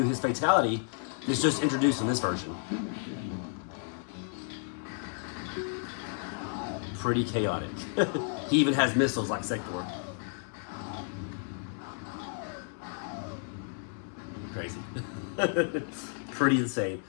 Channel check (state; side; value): silent; right; 56 dB below the other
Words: his fatality. It's just introduced in this version. Pretty chaotic. He even has missiles like Sector. Crazy. Pretty insane.